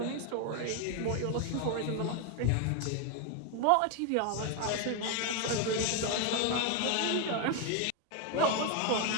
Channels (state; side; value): different; both; correlation 0.01